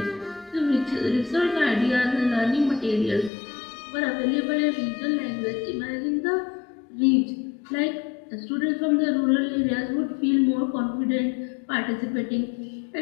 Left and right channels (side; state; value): right; drops out; at 3.3 s